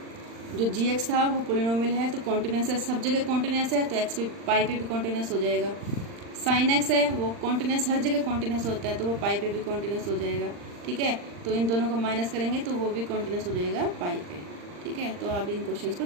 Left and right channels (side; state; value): left; late; 39 ms